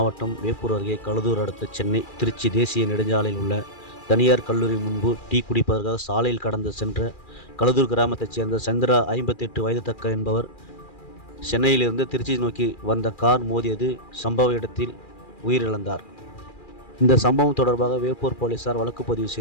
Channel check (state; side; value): late; right; 2.4 ms